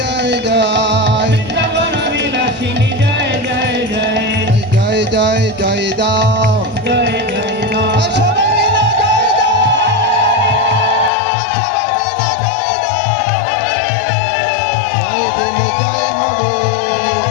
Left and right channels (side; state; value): right; drops out; at 11.1 s